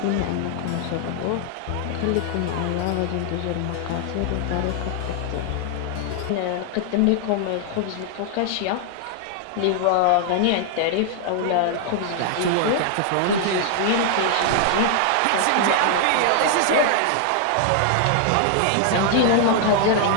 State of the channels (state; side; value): different; both; correlation 0.00